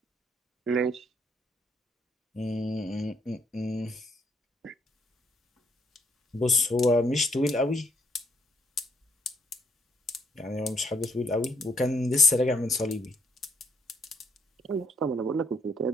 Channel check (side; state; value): both; normal; correlation 0.73